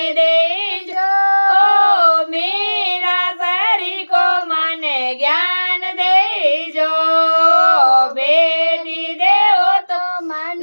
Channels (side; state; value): both; inverted; correlation -1.00